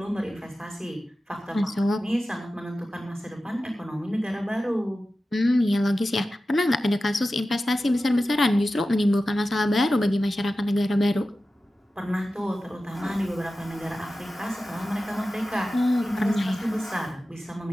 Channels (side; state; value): both; normal; correlation 0.94